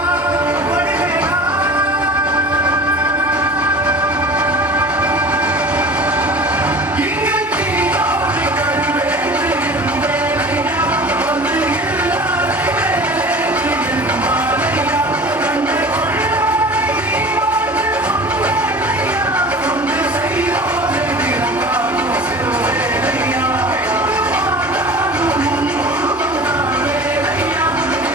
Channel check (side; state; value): both; normal; correlation 0.39